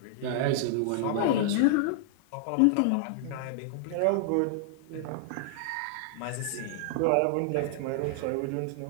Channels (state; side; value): different; both; correlation -0.01